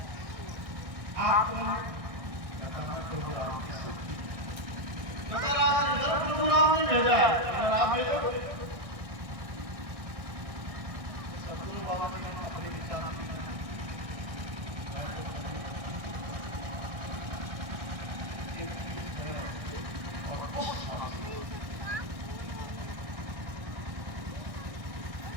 आप प्रभु राम की शक्ति, कहता राम इधर प्रभु राम ने भेजा है, अगर आप भेजो। सदगुरु बाबा जी ने अपने विचार और उस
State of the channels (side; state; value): left; late; 1.6 ms